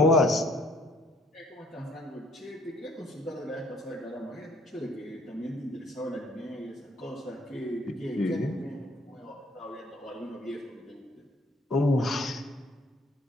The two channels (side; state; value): both; normal; correlation 0.61